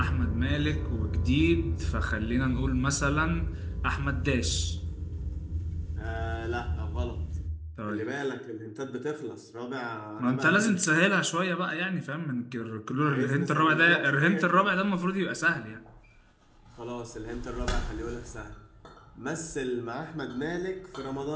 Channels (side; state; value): both; identical; correlation 1.00